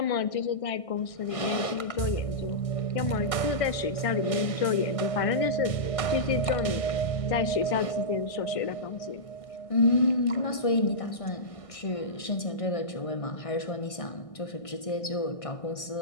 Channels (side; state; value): right; late; 1.6 ms